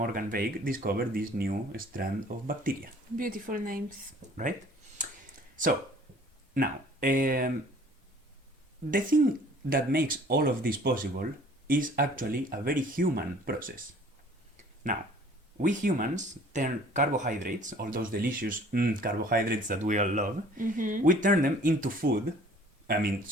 Veig discovered this new strand of bacteria. Beautiful names. Right? So, now, the thing that makes all of this possible is actually a very human process. Now, we humans turn carbohydrates, all those delicious carbohydrates that we all love, we turn them into food.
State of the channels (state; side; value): normal; both; correlation 0.52